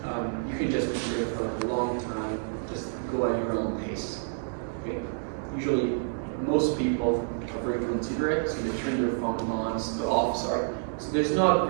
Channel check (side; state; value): left; silent; digital silence